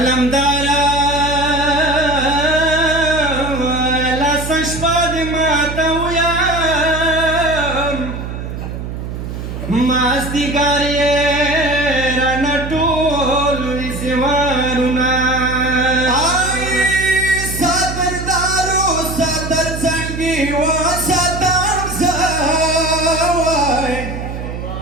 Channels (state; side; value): noise; right; hum, 7 dB below the sound